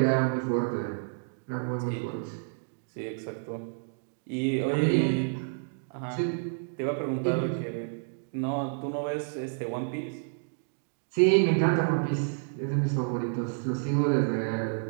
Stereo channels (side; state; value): left; silent; digital silence